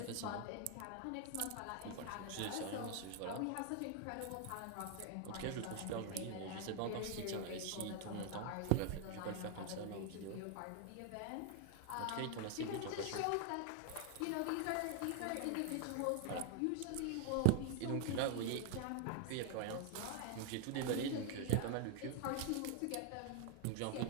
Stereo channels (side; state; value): both; different; correlation 0.00